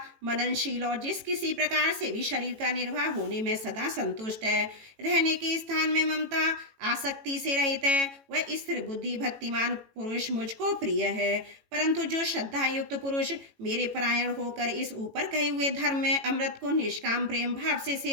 मननशील और जिस किसी प्रकार से भी शरीर का निर्वाह होने में सदा संतुष्ट है, रहने के स्थान में ममता आसक्ति से रहित है, वह स्थिर बुद्धि भक्तिमान पुरुष मुझको प्रिय है। परंतु जो श्रद्धा युक्त पुरुष मेरे परायण होकर इस ऊपर कहे हुए धर्म में अमृत को निष्काम प्रेम भाव से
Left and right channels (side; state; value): left; late; 18 ms